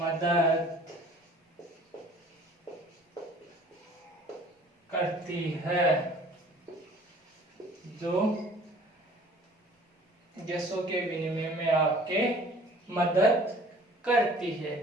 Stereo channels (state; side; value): normal; both; correlation 0.50